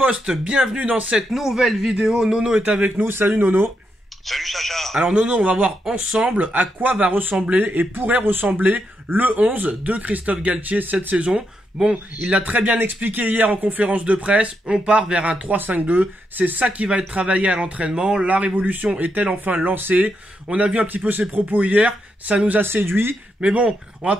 bienvenue dans cette nouvelle vidéo. Nono est avec nous. Salut Nono. Salut Sacha. Alors Nono, on va voir ensemble à quoi va ressembler et pourrait ressembler le 11 de Christophe Galtier cette saison. Bon, il l'a très bien expliqué hier en conférence de presse, on part vers un 3-5-2, c'est ça qui va être travaillé à l'entraînement, la révolution est-elle enfin lancée? On a vu un petit peu ses propos hier, ça nous a séduit, mais bon, on va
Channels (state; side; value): normal; both; correlation 0.82